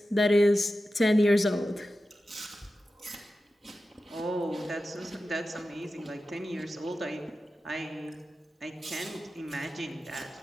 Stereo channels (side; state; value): both; normal; correlation 0.93